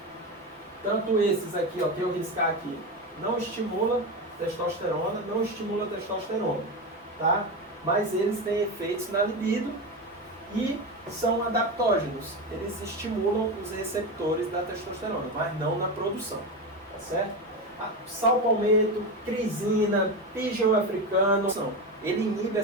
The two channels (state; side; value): normal; both; correlation 0.18